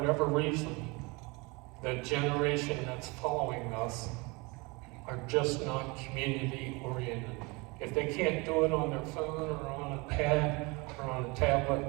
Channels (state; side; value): quieter; left; 26.7 dB